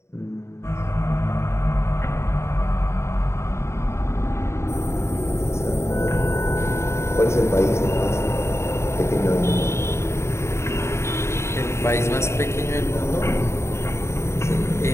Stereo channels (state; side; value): late; right; 0.13 ms